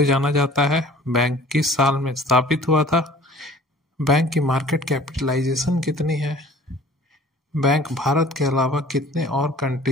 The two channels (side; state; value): both; normal; correlation 0.48